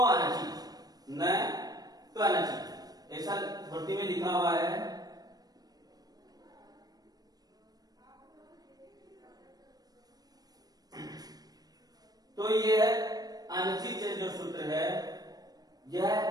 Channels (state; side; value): late; left; 0.19 ms